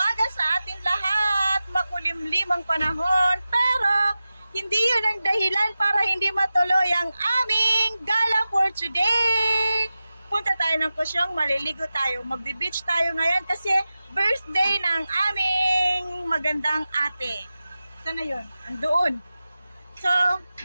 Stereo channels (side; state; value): both; inverted; correlation -0.95